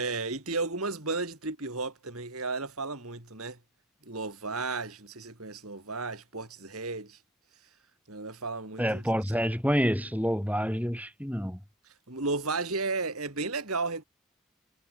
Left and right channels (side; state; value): both; normal; correlation 0.33